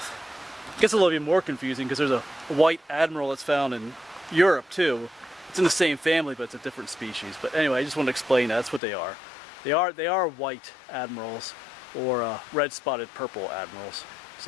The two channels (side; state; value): right; drops out; at 8.8 s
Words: It gets a little bit more confusing because there's a white admiral that's found in Europe too. It's in the same family, but it's a different species. But anyway, I just want to explain that. That's what they are. They are white admirals, or red spotted purple admirals.